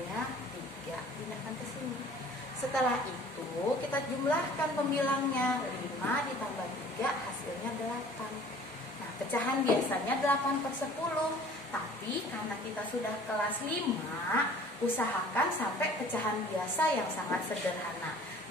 3. Pindahkan ke sini. Setelah itu kita jumlahkan pembilangnya. 5 ditambah 3 hasilnya 8. Nah, pecahan biasanya 8/10. Tapi karena kita sudah kelas 5, usahakan sampai pecahan biasa yang sangat sederhana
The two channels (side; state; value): both; normal; correlation 0.49